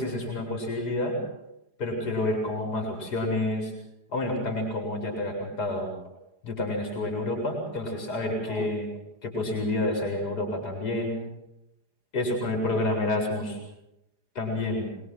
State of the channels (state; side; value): late; right; 4.9 ms